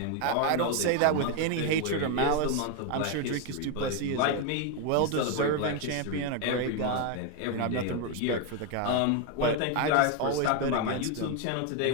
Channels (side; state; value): both; different; correlation 0.01